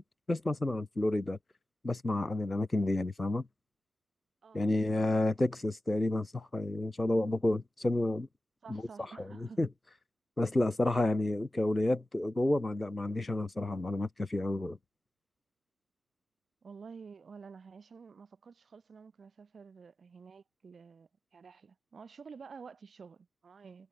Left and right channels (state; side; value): normal; both; correlation 0.95